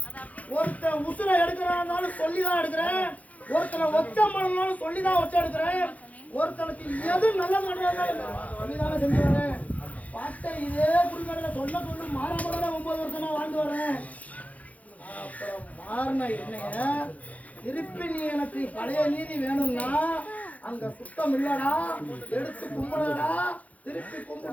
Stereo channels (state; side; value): late; right; 0.071 ms